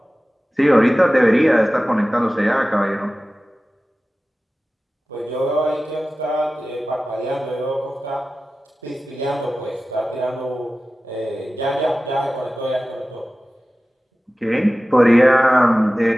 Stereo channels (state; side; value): normal; both; correlation 0.96